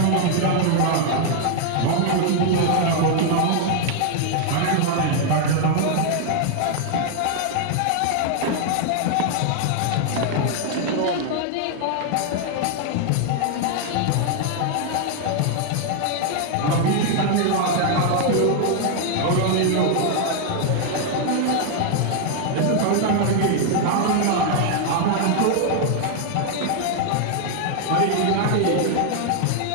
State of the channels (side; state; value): both; different; correlation 0.00